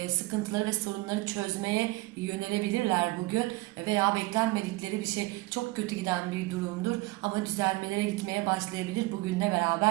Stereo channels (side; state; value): left; quieter; 21.8 dB